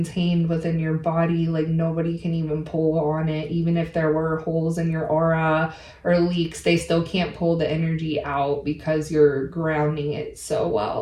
within your body, like nobody can even pull on it. Even if there were holes in your aura or leaks, they still can't pull the energy out because you're grounding it so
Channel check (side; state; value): both; identical; correlation 1.00